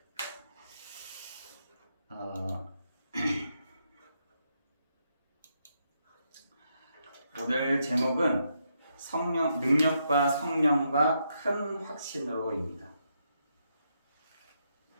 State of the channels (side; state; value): both; inverted; correlation -0.80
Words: 오늘 제목은 능력과 성령과 큰 확신으로입니다.